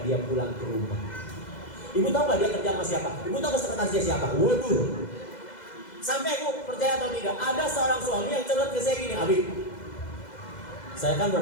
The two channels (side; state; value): right; late; 2.0 ms